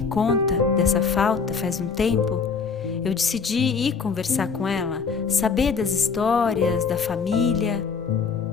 conta dessa falta faz um tempo, eu decidi ir conversar com ela, saber das histórias, da família.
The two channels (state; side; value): quieter; right; 5.5 dB